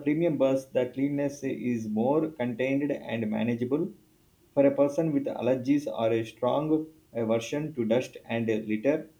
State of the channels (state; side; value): identical; both; correlation 1.00